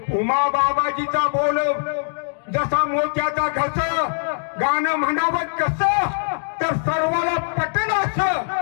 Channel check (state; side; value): silent; right; digital silence